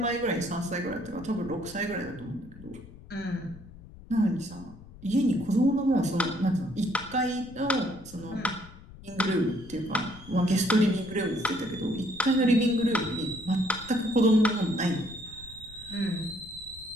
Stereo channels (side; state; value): left; noise; rumble, 19 dB below the sound